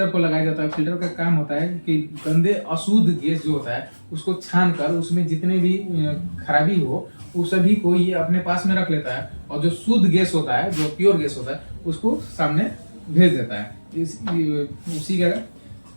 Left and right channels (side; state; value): both; inverted; correlation -1.00